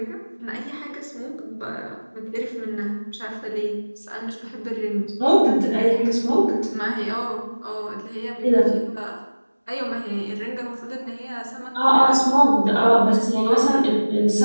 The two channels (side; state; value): both; inverted; correlation -1.00